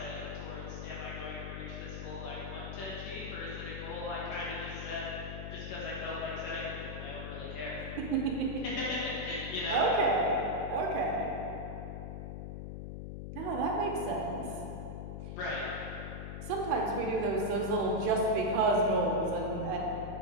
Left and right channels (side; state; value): left; noise; hum, 6 dB below the sound